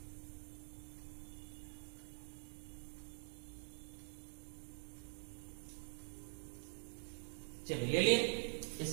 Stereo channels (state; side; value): silent; left; digital silence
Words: चलिए ले लिए,